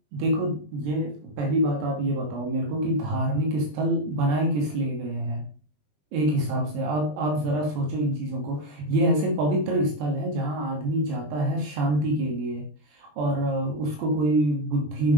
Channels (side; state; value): left; late; 20 ms